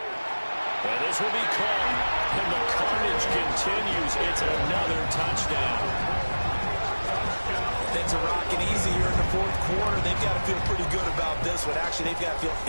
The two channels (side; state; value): both; inverted; correlation -1.00